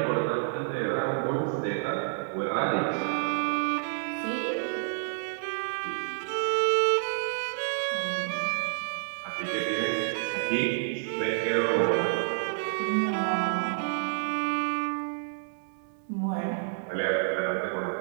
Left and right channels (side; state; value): left; silent; digital silence